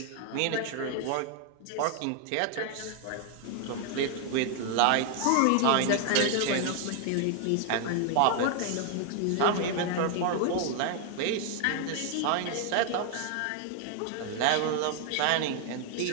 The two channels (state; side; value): different; both; correlation 0.00